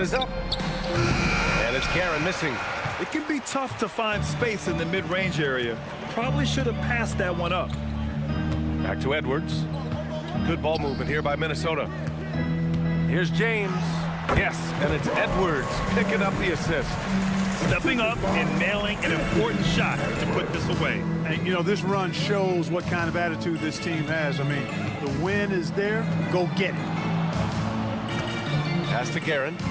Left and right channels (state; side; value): identical; both; correlation 1.00